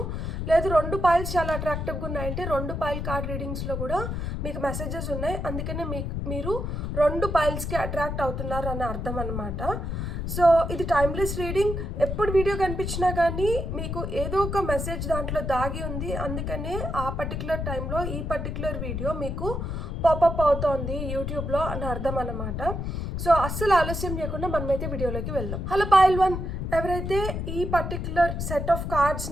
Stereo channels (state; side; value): noise; left; rumble, 3 dB below the sound